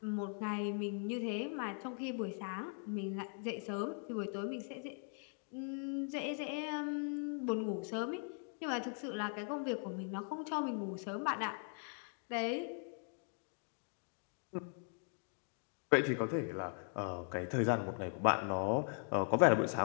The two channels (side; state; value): right; silent; 51 dB below the other